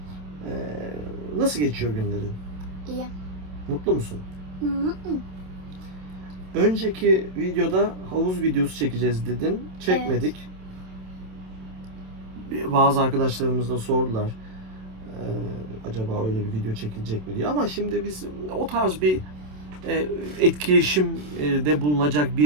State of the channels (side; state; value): left; late; 27 ms